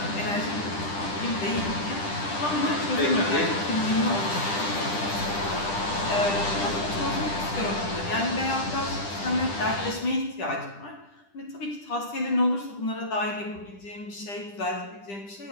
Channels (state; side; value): late; right; 10 ms